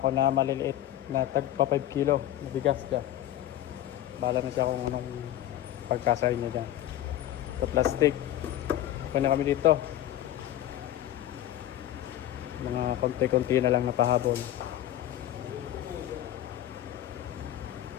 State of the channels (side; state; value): right; quieter; 12.9 dB